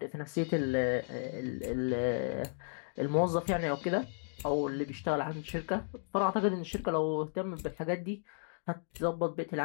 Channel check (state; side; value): silent; right; digital silence